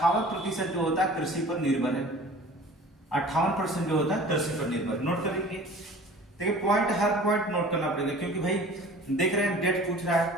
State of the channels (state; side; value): normal; both; correlation 0.44